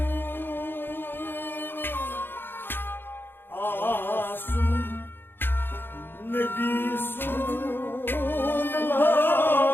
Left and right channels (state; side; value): late; right; 0.10 ms